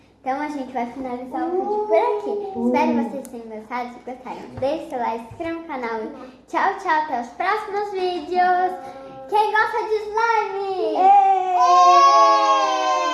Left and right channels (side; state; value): both; identical; correlation 1.00